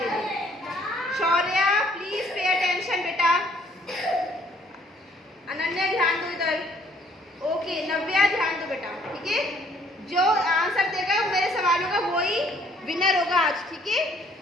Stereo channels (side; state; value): both; normal; correlation 0.62